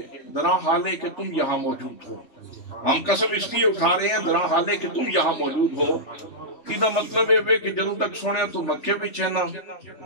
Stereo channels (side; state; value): right; late; 3.4 ms